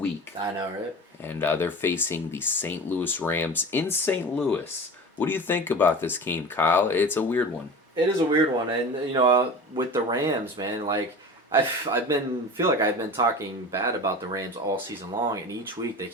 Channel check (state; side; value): normal; both; correlation 0.34